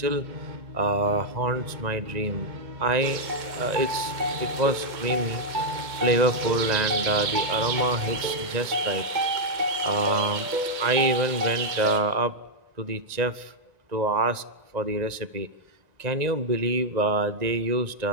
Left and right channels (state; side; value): late; left; 1.9 ms